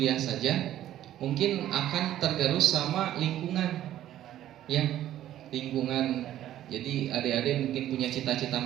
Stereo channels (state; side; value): quieter; left; 12.5 dB